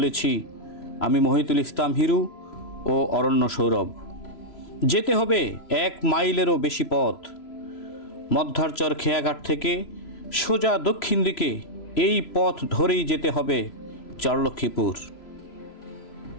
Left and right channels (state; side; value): late; right; 3.0 ms